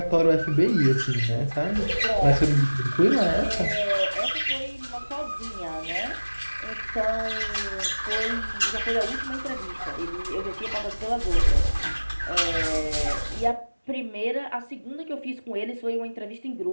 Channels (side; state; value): both; inverted; correlation -1.00